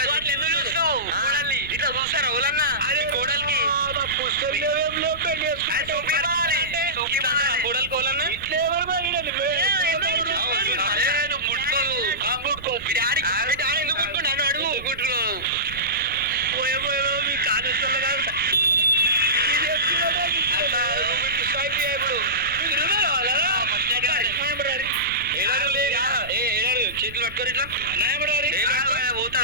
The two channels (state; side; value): noise; right; rumble, 16 dB below the sound